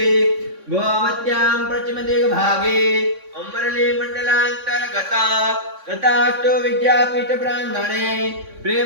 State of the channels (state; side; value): late; left; 3.6 ms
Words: गोमत्यां पश्चिमदिग्भागे अमरली मंडलांतर्गत तथास्तु विद्यापीठ प्रांगणे